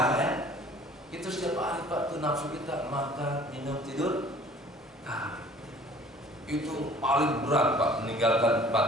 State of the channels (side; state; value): both; normal; correlation 0.51